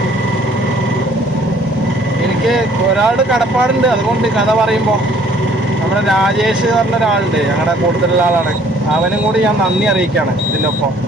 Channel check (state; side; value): normal; both; correlation 0.58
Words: എനിക്ക് ഒരാളുടെ കടപ്പാടുണ്ട്, അതുകൊണ്ട് കഥ പറയുമ്പോൾ നമ്മുടെ രാജേഷ് പറഞ്ഞ ഒരാളുണ്ട്, ഞങ്ങളുടെ കൂടുതലുള്ള ആളാണ്. അവനും കൂടി ഞാൻ നന്ദി അറിയിക്കുകയാണ് ഇതിൻ്റെ ഒപ്പം.